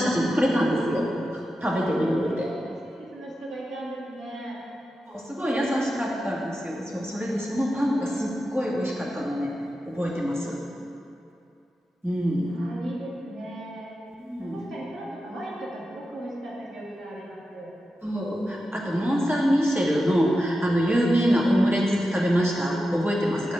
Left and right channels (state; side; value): normal; both; correlation 0.90